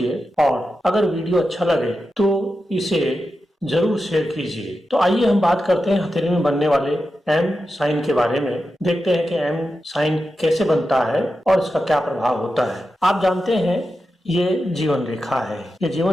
और अगर वीडियो अच्छा लगे तो इसे जरूर शेयर कीजिए। तो आइए हम बात करते हैं हथेली में बनने वाले एम साइन के बारे में। देखते हैं कि एम साइन कैसे बनता है और इसका क्या प्रभाव होता है। आप जानते हैं ये जीवन रेखा है, ये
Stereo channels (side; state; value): both; normal; correlation 0.90